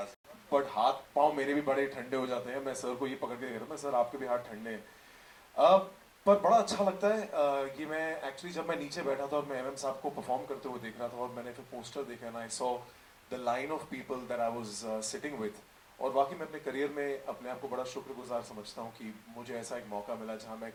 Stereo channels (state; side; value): identical; both; correlation 1.00